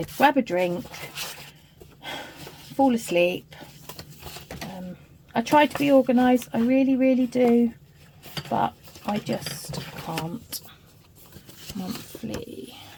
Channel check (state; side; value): identical; both; correlation 1.00